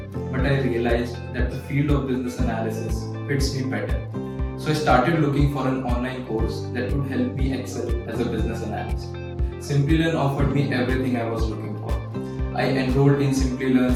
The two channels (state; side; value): identical; both; correlation 1.00